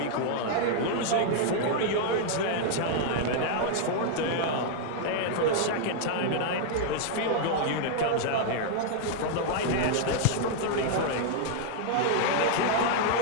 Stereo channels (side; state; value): both; different; correlation -0.01